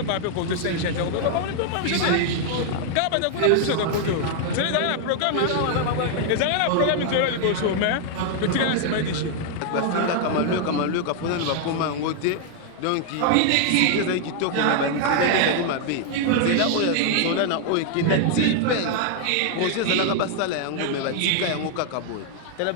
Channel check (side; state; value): both; different; correlation 0.00